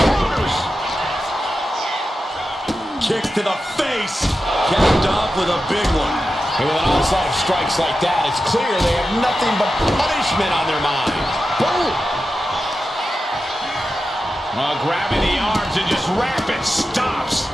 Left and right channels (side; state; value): both; normal; correlation 0.91